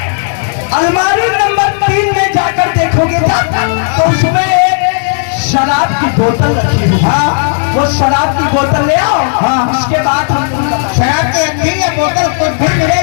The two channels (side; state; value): right; silent; digital silence